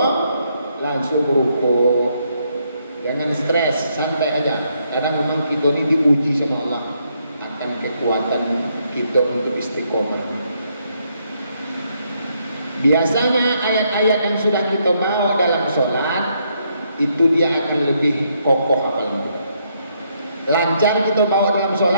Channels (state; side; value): inverted; both; correlation -0.74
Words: langsung rukuk. Jangan stres, santai aja. Karena memang kita ini diuji sama Allah akan kekuatan kita untuk istiqomah. Biasanya ayat-ayat yang sudah kita bawa dalam sholat itu dia akan lebih kokoh hafalannya. Lancar kita bawa dalam